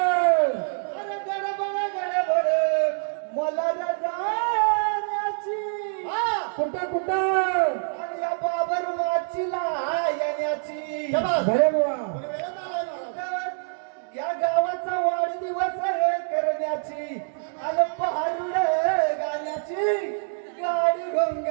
गडबड मला जाण्याची. कुठं कुठं? आणि या बाबर वाचीला येण्याची. बरे बुवा. या गावाचा वाढदिवस करण्याची. आणि पहारुड गाण्याची गाडी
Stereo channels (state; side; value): silent; left; digital silence